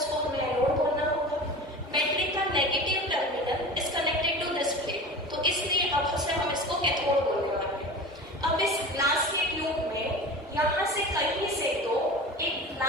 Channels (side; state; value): both; normal; correlation 0.34